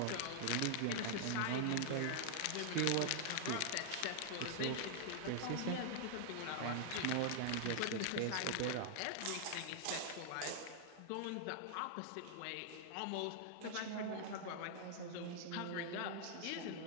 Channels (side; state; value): both; different; correlation -0.01